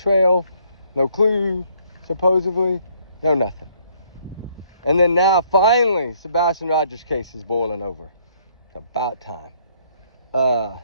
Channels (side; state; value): both; inverted; correlation -0.66